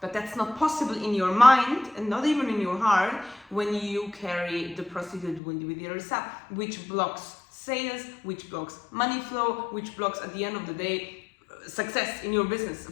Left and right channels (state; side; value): drops out; right; at 5.4 s